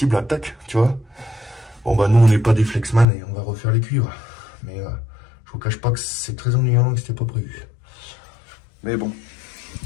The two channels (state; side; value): drops out; right; at 3.1 s